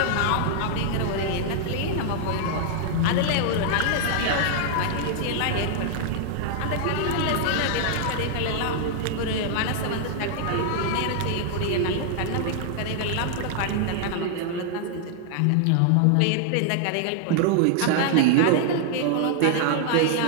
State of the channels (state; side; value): different; both; correlation 0.00